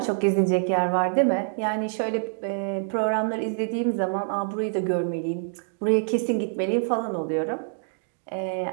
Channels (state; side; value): silent; left; digital silence